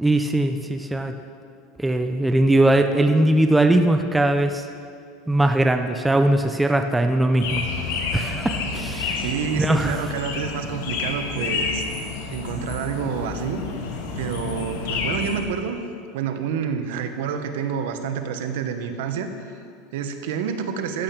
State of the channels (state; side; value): normal; both; correlation 0.67